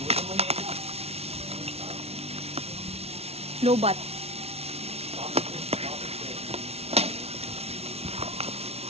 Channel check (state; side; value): late; left; 0.30 ms